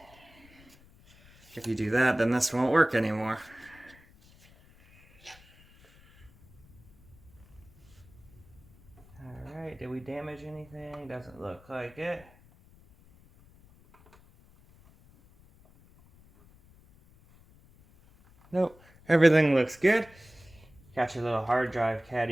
If you do that, then this won't work anymore. Alright, did we damage anything? Doesn't look like it. Nope, everything looks good. Got your little hard drive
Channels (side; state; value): left; noise; rumble, 26 dB below the sound